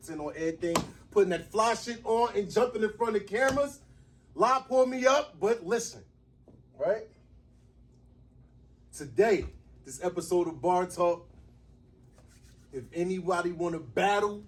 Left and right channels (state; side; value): identical; both; correlation 1.00